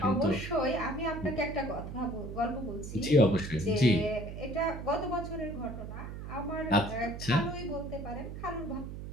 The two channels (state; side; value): noise; right; hum, 9 dB below the sound